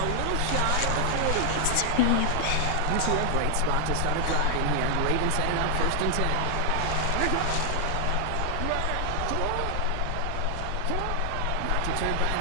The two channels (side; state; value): both; different; correlation 0.00